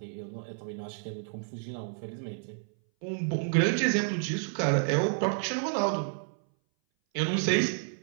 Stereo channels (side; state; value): left; silent; 58 dB below the other